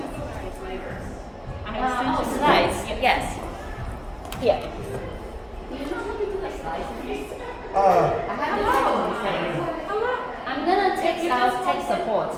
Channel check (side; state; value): both; identical; correlation 1.00